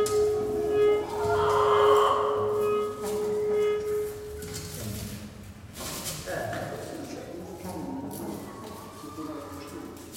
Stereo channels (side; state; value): both; identical; correlation 1.00